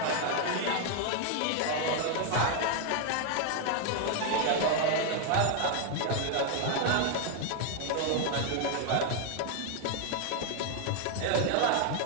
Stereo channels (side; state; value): both; different; correlation 0.00